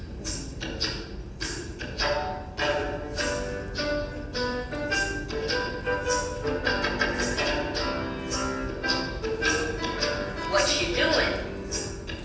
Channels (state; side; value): identical; both; correlation 1.00